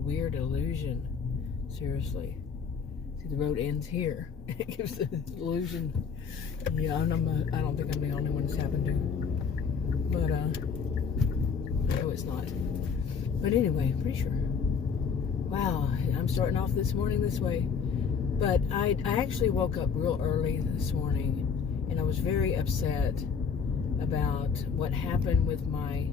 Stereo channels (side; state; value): right; quieter; 6.1 dB